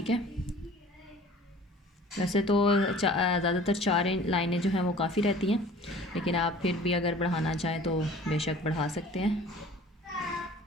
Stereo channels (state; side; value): normal; both; correlation 0.47